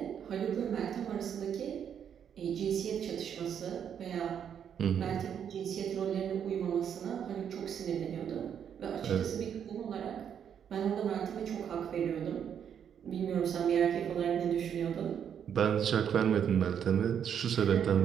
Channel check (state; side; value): quieter; left; 8.4 dB